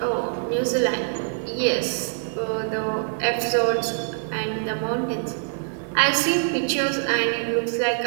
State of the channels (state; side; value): silent; left; digital silence